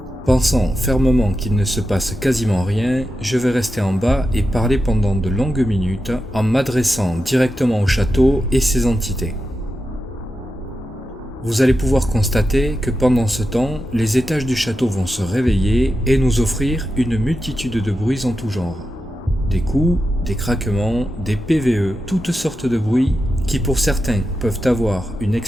Pensant fermement qu'il ne se passe quasiment rien, je vais rester en bas et parler pendant de longues minutes en m'adressant directement au château et ses entités. Vous allez pouvoir constater que pendant ce temps, les étages du château vont se réveiller et nous offrir une multitude de bruits en tout genre. Des coups, des craquements, des PVE, toutes sortes de bruits qui pour certains peuvent avoir une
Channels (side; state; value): both; normal; correlation 0.90